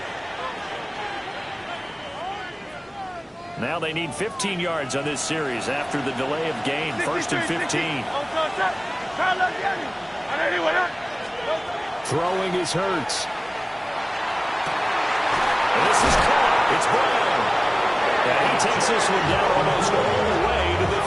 Now they need 15 yards on this series after the delay of game. 1st and 15. Throwing is Hurts. And this is caught. It's Brown. And he takes this one down almost all the way to the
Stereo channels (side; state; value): both; identical; correlation 1.00